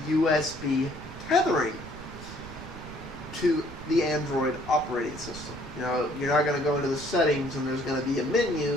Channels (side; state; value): right; noise; rumble, 14 dB below the sound